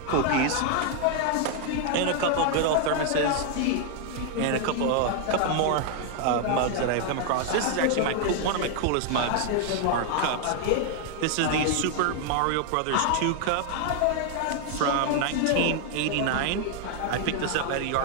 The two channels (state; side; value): different; both; correlation 0.00